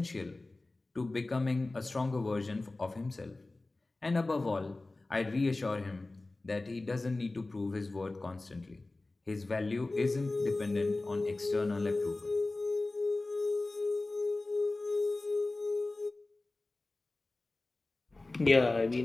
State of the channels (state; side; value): quieter; right; 3.1 dB